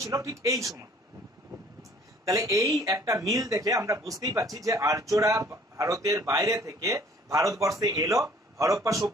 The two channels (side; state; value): both; normal; correlation 0.55